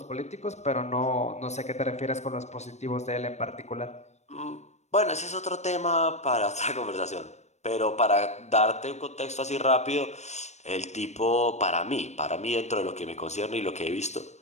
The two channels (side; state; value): right; late; 0.33 ms